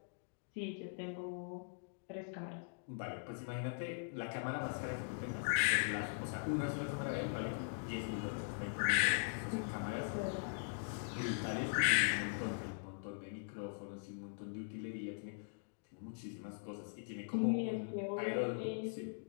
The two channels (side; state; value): right; silent; digital silence